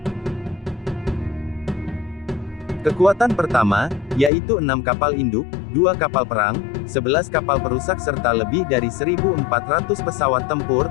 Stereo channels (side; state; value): right; drops out; at 4.3 s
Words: Kekuatan pertama, yaitu 6 kapal induk, 2 kapal perang, 11 kapal perusak serta lebih dari 1.400 pesawat tempur,